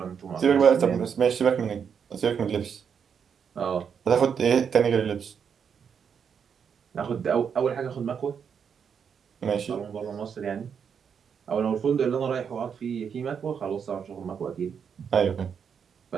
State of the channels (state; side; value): quieter; left; 7.1 dB